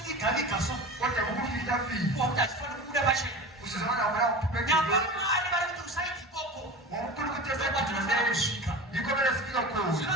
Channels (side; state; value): both; normal; correlation 0.33